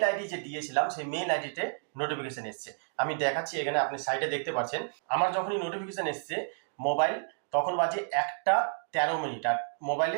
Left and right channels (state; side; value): silent; left; digital silence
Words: আইডি যে দিয়েছিলাম সেই মেল আইডিতে নোটিফিকেশন এসছে। আমি দেখাচ্ছি, এখানে আপনি সাইডে দেখতে পাচ্ছেন। আমার যখনই নোটিফিকেশন এসছে মোবাইল, তখন বাজে ১টা ১৩ মিনিট, আর